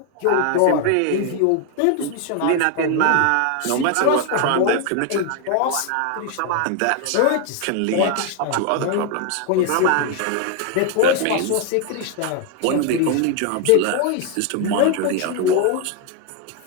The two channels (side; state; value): both; different; correlation 0.00